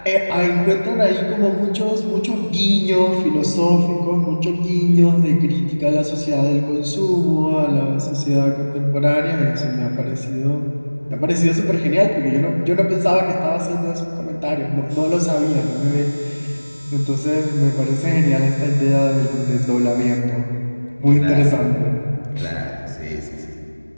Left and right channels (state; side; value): inverted; both; correlation -1.00